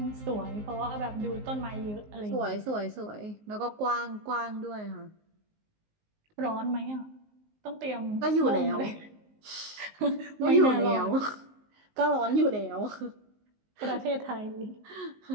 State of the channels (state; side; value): late; left; 19 ms